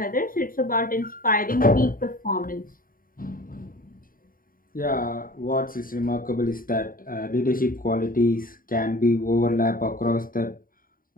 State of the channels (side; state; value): right; late; 0.41 ms